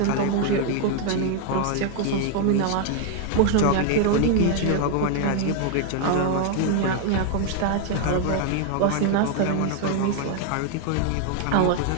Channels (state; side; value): different; both; correlation 0.00